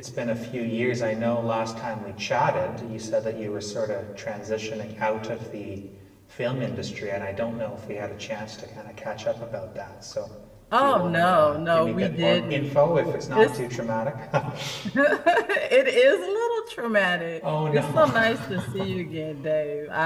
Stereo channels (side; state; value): both; identical; correlation 1.00